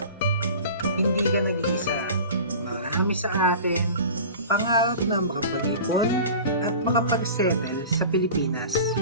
Hindi ka nag-iisa. Marami sa atin pangarap na makapag-ipon at makapag-settle sa Pilipinas.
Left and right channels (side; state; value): both; inverted; correlation -0.37